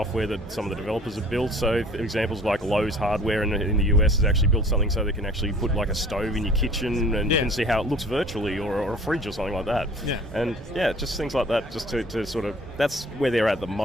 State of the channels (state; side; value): normal; both; correlation 0.50